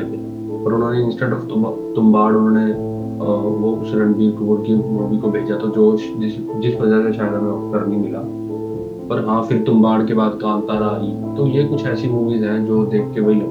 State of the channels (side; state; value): both; identical; correlation 1.00